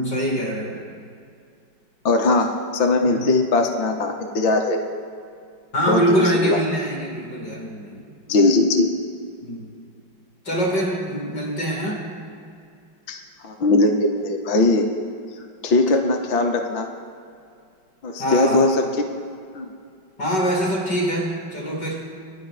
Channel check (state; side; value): late; right; 5.3 ms